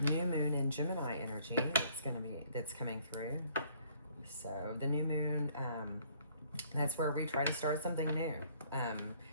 new moon in Gemini energy that's coming through. So the new moon, that's where we try to start something new. And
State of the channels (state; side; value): inverted; both; correlation -0.62